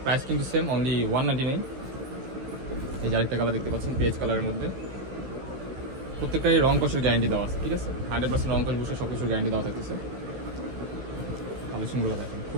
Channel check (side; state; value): left; late; 15 ms